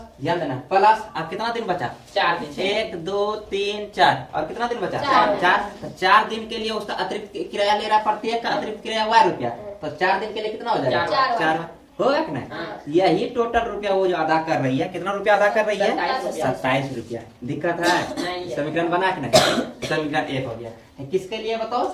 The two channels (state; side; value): identical; both; correlation 1.00